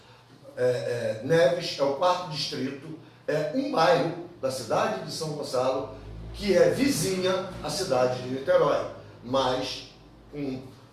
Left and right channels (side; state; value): both; identical; correlation 1.00